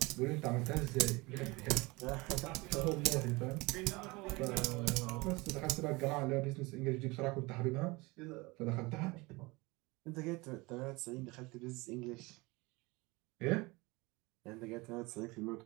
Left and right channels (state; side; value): quieter; left; 24.0 dB